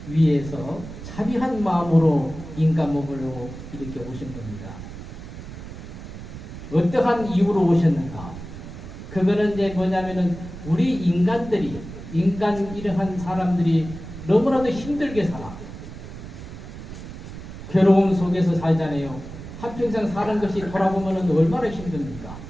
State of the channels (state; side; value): noise; right; rumble, 12 dB below the sound